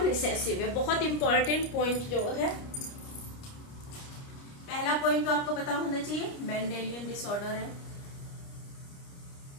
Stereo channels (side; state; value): right; late; 29 ms